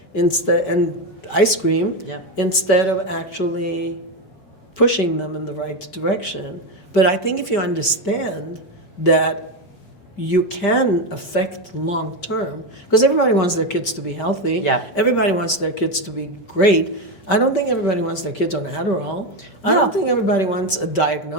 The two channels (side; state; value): right; late; 5.1 ms